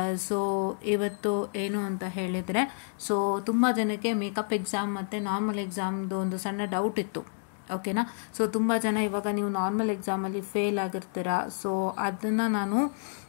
ಸೊ ಇವತ್ತು ಏನು ಅಂತ ಹೇಳಿದರೆ, ಸೊ ತುಂಬ ಜನಕ್ಕೆ ಮೇಕಪ್ ಎಕ್ಸಾಮ್ ಮತ್ತು ನಾರ್ಮಲ್ ಎಕ್ಸಾಮ್ದು ಒಂದು ಸಣ್ಣ ಡೌಟ್ ಇತ್ತು, ಓಕೆನಾ. ಸೊ ತುಂಬ ಜನ ಇವಾಗ ನೀವು ನಾರ್ಮಲ್ ಎಕ್ಸಾಮಲ್ಲಿ ಫೇಲ್ ಆಗಿರ್ತೀರಾ. ಸೊ ಅದನ್ನು ನಾನು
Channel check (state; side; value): silent; right; 58 dB below the other